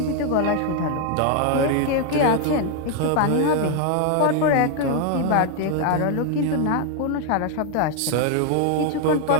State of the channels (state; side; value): different; both; correlation 0.00